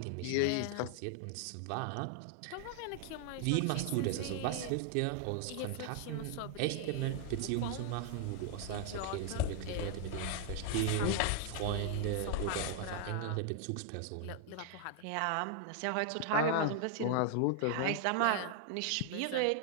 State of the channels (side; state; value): both; different; correlation 0.00